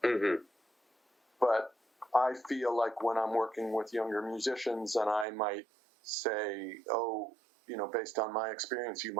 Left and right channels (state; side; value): drops out; left; at 5.2 s